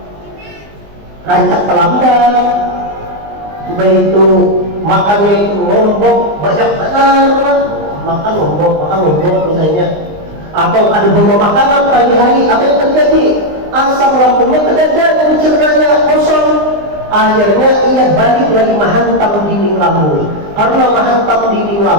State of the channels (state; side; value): late; left; 20 ms